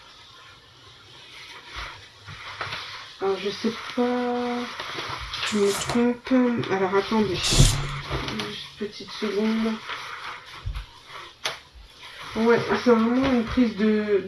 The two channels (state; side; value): identical; both; correlation 1.00